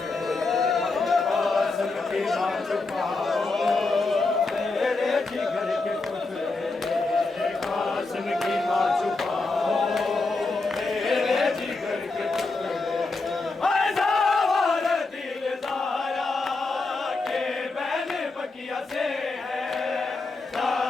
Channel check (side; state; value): right; quieter; 3.6 dB